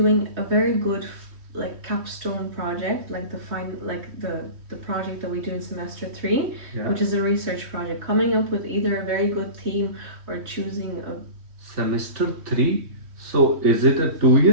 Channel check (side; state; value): left; late; 3.1 ms